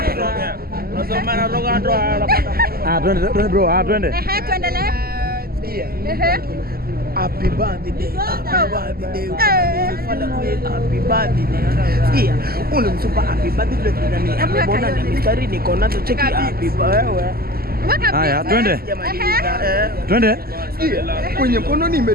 Unasoma roga ndo anapata. Twende bro, twende. Tuendelee. Happy birthday. Happy birthday. Sikia, ule msupa happy birthday tunani. Mbona ni mistari niko nazo cheki happy birthday. Haya, twende. Twende. Kwenye mkono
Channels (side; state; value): left; late; 0.44 ms